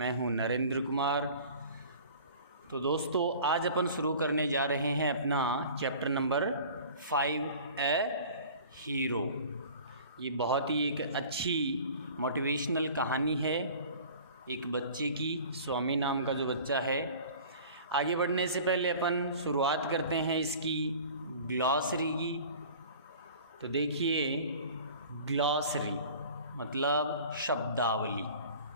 हूं नरेंद्र कुमार। तो दोस्तों, आज अपन शुरू करने जा रहे हैं अपना चैप्टर नंबर 5 ए हीरो। ये बहुत ही एक अच्छी मोटिवेशनल कहानी है एक बच्चे की, स्वामी नाम का जो बच्चा है। आगे बढ़ने से पहले अपन शुरुआत करते हैं इसकी ग्लॉसरी की। तो देखिए, ग्लॉसरी मतलब शब्दावली।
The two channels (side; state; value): both; inverted; correlation -0.44